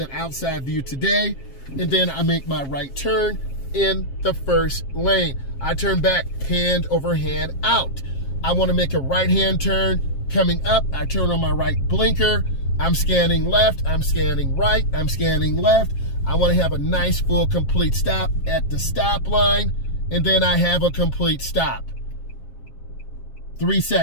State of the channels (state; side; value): late; right; 7.4 ms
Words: outside view today. And then I make my right turn in the first lane. I turn back hand over hand out. I want to make a right-hand turn. Coming up, I turn on my right blinker. I'm scanning left, I'm scanning right, I'm scanning left. I want to have a nice, full, complete stop at the stop line, and then I have a complete stop. 3